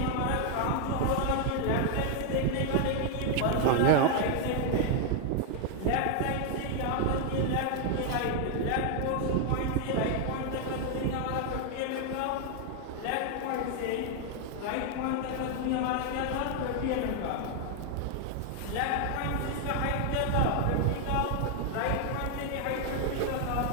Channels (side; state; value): both; different; correlation 0.00